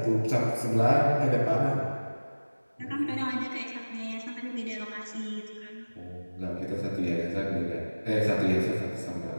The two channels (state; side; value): inverted; both; correlation -1.00